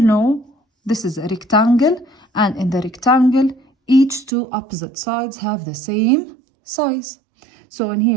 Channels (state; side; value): drops out; left; at 4.3 s